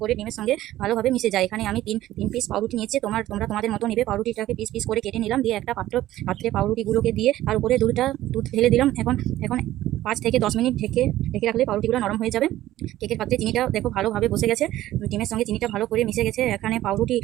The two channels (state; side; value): quieter; left; 14.5 dB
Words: করে ডিমের সঙ্গে ভালোভাবে মিশে যায়। এখানে আমি তিন পিস পাউরুটি নিয়েছি। তোমরা তোমাদের মতো নেবে। পাউরুটিটাকে পিস পিস করে কেটে নিলাম। দিয়ে একটা পাত্রে পাউরুটিগুলোকে দিয়ে তার উপরে দুধ ঢেলে দিলাম। এখন 5 থেকে 10 মিনিট ঢেকে রাখলে পাউরুটিগুলো নরম হয়ে যাবে। কেকের পাত্রে চিনিটা দেখো ভালোভাবে বসে গেছে। ডিমের সঙ্গে চিনিটা ভালো করে মিশে গেছে। এখানে পাউরুটি